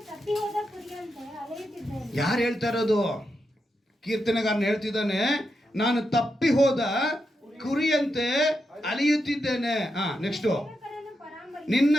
ಯಾರು ಹೇಳ್ತಾ ಇರೋದು? ಕೀರ್ತನೆಗಾರನ ಹೇಳ್ತಿದ್ದಾನೆ, ನಾನು ತಪ್ಪಿ ಹೋದ ಕುರಿಯಂತೆ ಅಲಿಯುತ್ತಿದ್ದೇನೆ. ನೆಕ್ಸ್ಟು, ನಿನ್ನ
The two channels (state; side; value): normal; both; correlation 0.86